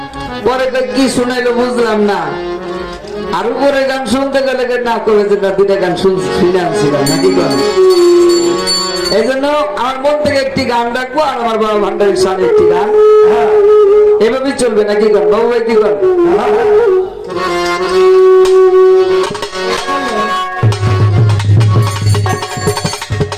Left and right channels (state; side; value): identical; both; correlation 1.00